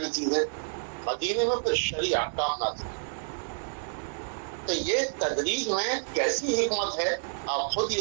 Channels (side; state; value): left; silent; digital silence